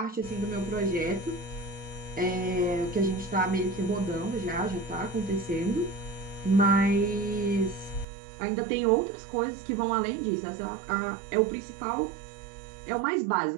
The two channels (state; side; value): drops out; left; at 8.1 s